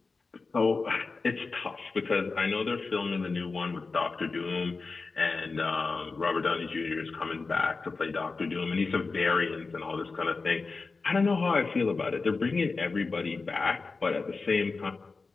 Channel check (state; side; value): quieter; right; 4.1 dB